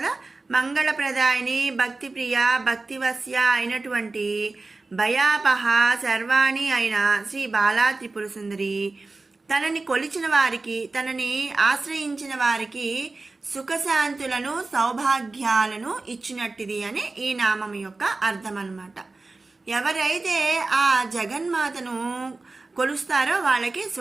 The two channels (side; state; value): left; quieter; 3.5 dB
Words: మంగళప్రదాయిని, భక్తిప్రియ, భక్తివశ్య అయినటువంటి భయాపహ శర్వాణి అయిన శ్రీ బాలా త్రిపుర సుందరి తనని కొలిచిన వారికి, తనని ఆశ్రయించిన వారికి సుఖశాంతులను సౌభాగ్యాలను ఇచ్చినట్టిది అని ఈ నామం యొక్క అర్థం అన్నమాట. ఎవరైతే ఆ జగన్మాతను కొలుస్తారో వాళ్ళకి